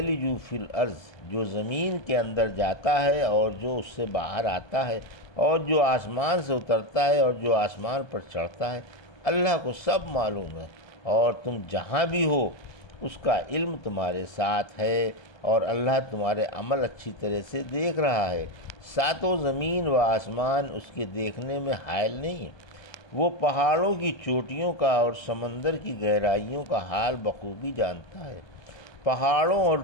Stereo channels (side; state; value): right; late; 1.2 ms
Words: فی الارض، جو زمین کے اندر جاتا ہے اور جو اس سے باہر آتا ہے، اور جو آسمان سے اترتا ہے اور جو آسمان پر چڑھتا ہے، اللہ کو سب معلوم ہے، اور تم جہاں بھی ہو اس کا علم تمہارے ساتھ ہے، اور اللہ تمہارے عمل اچھی طرح سے دیکھ رہا ہے۔ ساتوں زمین و آسمان اس کے دیکھنے میں حائل نہیں ہے، وہ پہاڑوں کی چوٹیوں کا اور سمندر کی گہرائیوں کا حال بخوبی جانتا ہے۔ پہاڑوں اور